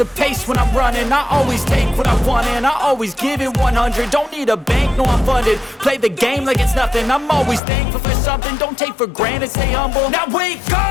pace when I'm running. I always take what I want and I always give it 100. Don't need a bank, no I'm funded. Play the game like it's nothing. I'm always thankful for something. Don't take for granted, stay humble. Now wake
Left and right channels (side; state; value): right; drops out; at 7.6 s